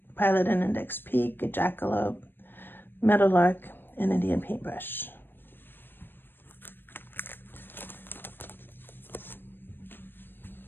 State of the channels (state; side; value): late; right; 0.097 ms